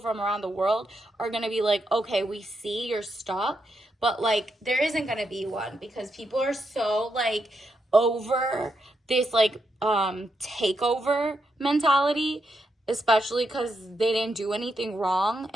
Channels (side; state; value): both; normal; correlation 0.82